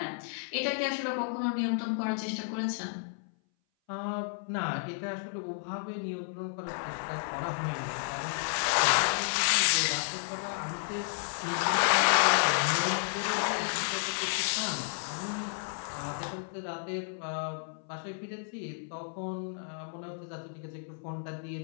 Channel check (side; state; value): right; silent; 56 dB below the other